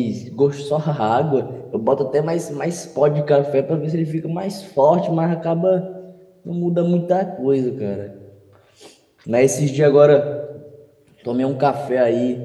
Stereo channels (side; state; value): both; identical; correlation 1.00